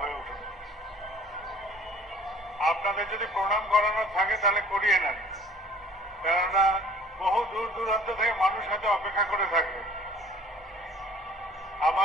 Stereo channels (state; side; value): normal; both; correlation 0.52